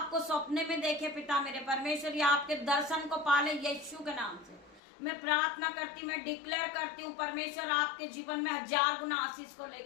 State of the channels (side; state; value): right; drops out; at 4.8 s